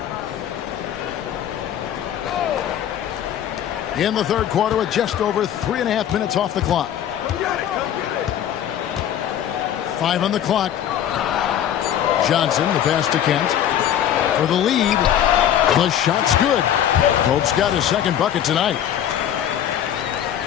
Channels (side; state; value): right; quieter; 10.4 dB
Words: In the third quarter with just over 3.5 minutes off the clock. 5 on the clock. Johnson, the pass to Kent. For the lead. The shot's good. Pope's got his second bucket tonight.